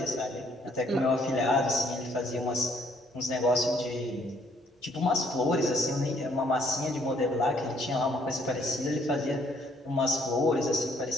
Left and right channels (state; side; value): normal; both; correlation 0.66